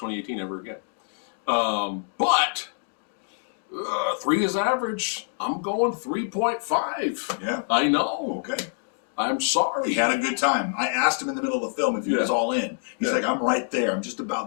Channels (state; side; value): silent; right; digital silence